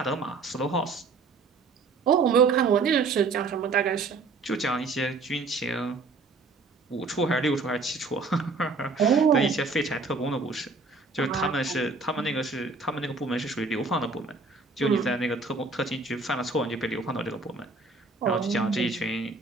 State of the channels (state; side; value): quieter; left; 3.9 dB